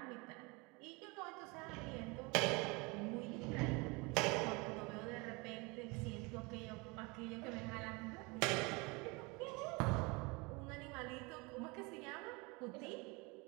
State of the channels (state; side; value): quieter; left; 27.3 dB